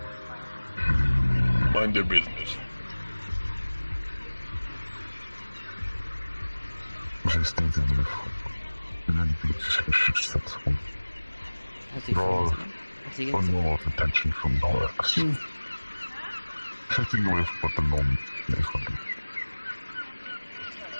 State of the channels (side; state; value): both; inverted; correlation -1.00